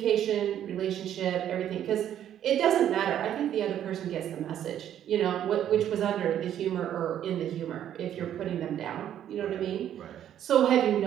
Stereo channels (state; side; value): quieter; left; 10.6 dB